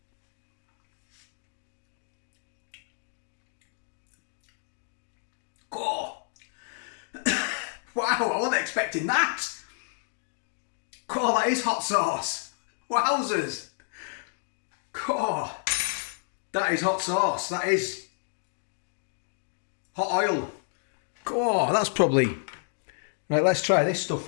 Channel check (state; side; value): silent; right; digital silence